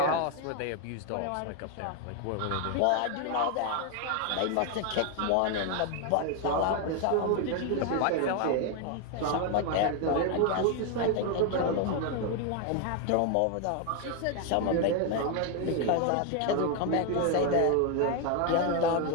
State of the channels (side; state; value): both; different; correlation 0.01